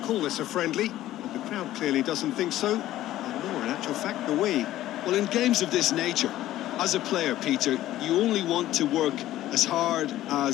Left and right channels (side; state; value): right; quieter; 14.2 dB